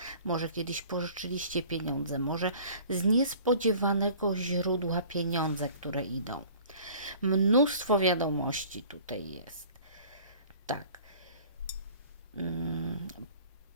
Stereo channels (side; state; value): both; inverted; correlation -0.49